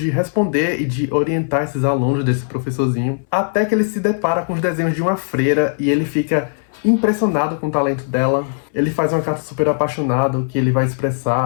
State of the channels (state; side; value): silent; right; 64 dB below the other